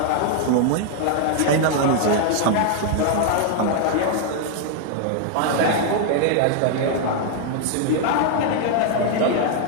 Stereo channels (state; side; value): different; both; correlation 0.00